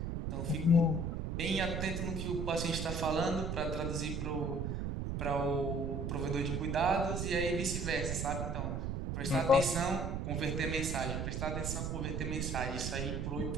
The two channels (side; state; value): right; noise; rumble, 2 dB below the sound